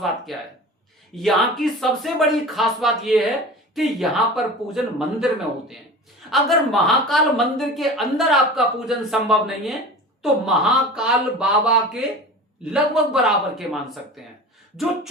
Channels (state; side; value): normal; both; correlation 0.36